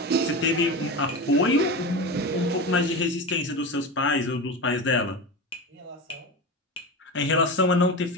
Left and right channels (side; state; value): both; normal; correlation 0.24